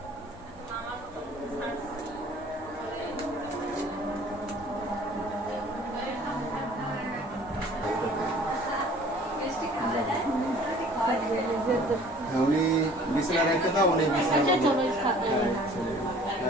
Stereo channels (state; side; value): normal; both; correlation 0.51